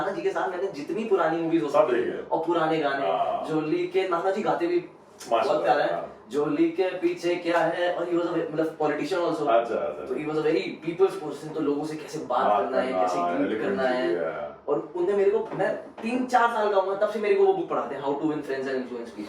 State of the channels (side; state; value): both; identical; correlation 1.00